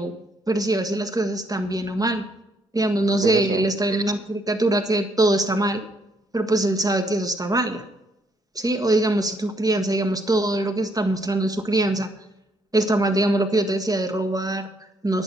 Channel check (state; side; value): normal; both; correlation 0.71